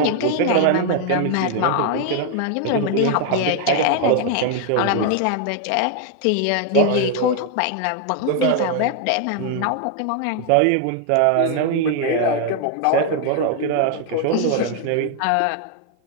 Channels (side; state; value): both; different; correlation 0.00